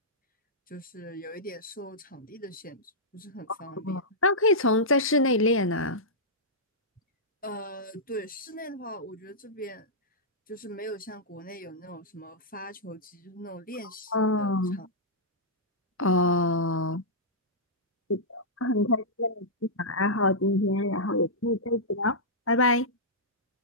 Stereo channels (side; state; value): both; normal; correlation -0.12